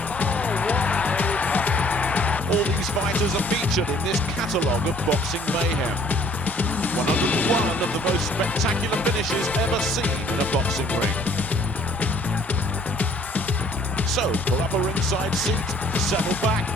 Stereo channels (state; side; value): normal; both; correlation 0.58